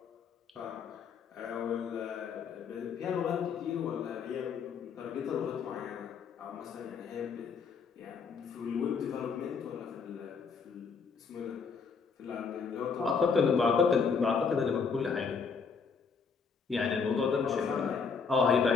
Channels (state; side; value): quieter; right; 5.6 dB